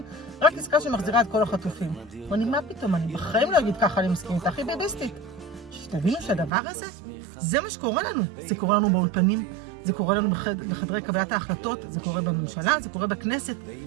רק עסקה שמחזירה את כל החטופים. ואני, מה פתאום? אני בחיים לא אגיד ככה אני מסכים איתה, הכי ביביסטית. שתבינו שהדבר הזה, זה מה שקורה לנו. זה קורה לנו באולפנים, זה קורה לנו בחדרי קבלת ההחלטות, זה קורה בממשלה, זה קורה בכנסת.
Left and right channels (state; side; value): drops out; left; at 6.5 s